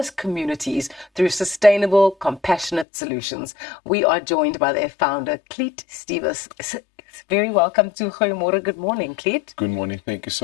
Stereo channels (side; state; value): right; drops out; at 2.9 s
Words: communities through sustainable, compassionate solutions. We are joined by their founder, Clete Stevis. Very welcome to Goeiemôre. Good morning, Clete. Good morning. Thank you